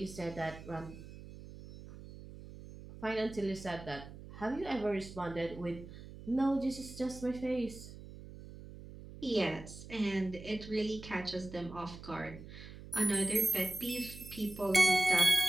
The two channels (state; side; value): noise; right; hum, 15 dB below the sound